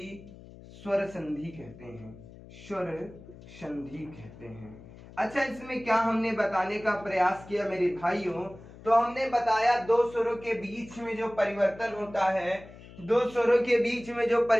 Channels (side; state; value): left; noise; hum, 19 dB below the sound